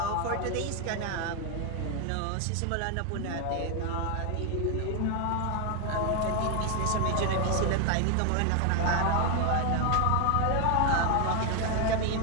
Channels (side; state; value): both; different; correlation 0.01